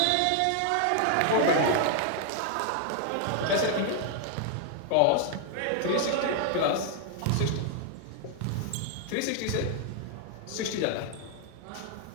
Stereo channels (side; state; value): both; different; correlation 0.00